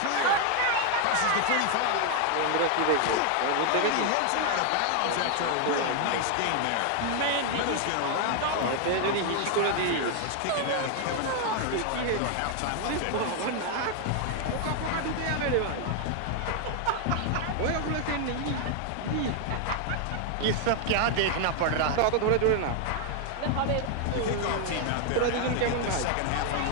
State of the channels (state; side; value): different; both; correlation 0.00